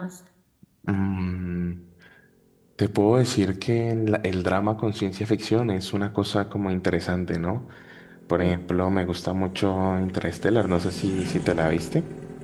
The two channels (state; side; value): identical; both; correlation 1.00